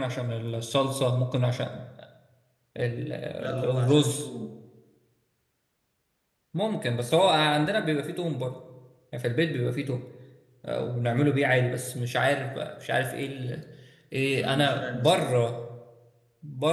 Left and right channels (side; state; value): both; identical; correlation 1.00